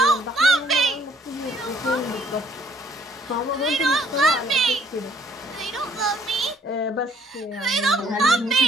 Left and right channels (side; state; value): both; normal; correlation 0.62